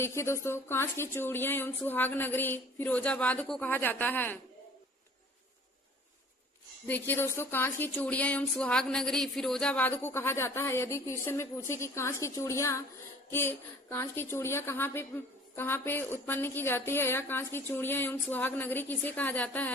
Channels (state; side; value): normal; both; correlation 0.49